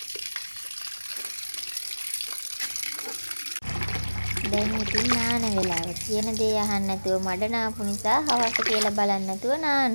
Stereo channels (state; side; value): inverted; both; correlation -1.00